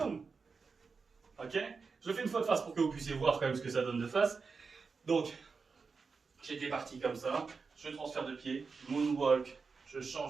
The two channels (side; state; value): left; quieter; 4.9 dB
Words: Ok? Je le fais une fois de face pour que vous puissiez voir quand même ce que ça donne de face. Donc, j'étais parti comme ça. Je transfère de pied. Moonwalk. Je